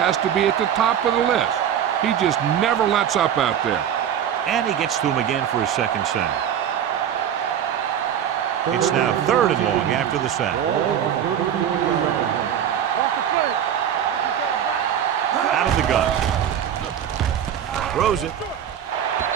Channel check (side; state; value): left; quieter; 9.4 dB